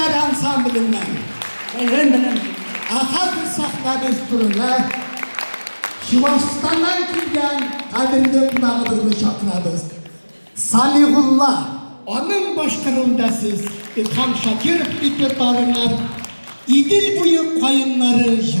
Ansamblinden Ahad Sahna Desturuna Şivastan'dan kilgen kadimde kunağıdığını şakınadız. Salihullah onun başkanında siz İlham Şakir repertuarından İdil boyu koyunları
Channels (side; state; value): both; inverted; correlation -1.00